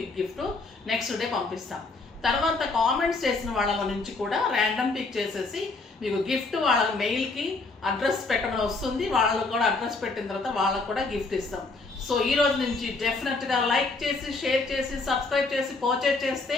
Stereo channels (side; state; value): right; quieter; 3.6 dB